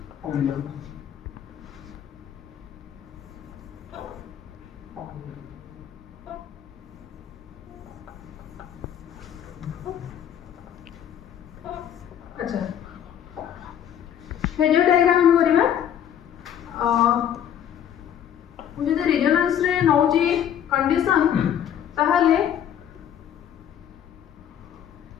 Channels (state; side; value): quieter; right; 9.7 dB